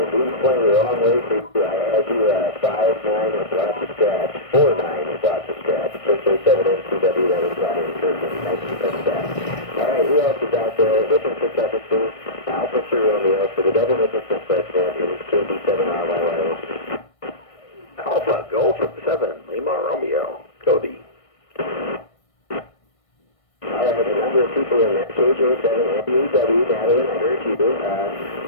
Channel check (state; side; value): late; right; 1.6 ms